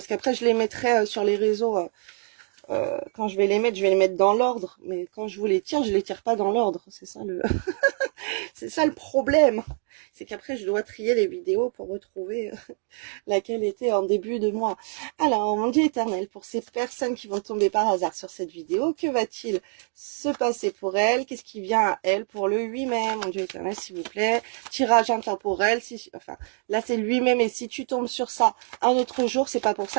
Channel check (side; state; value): left; silent; 56 dB below the other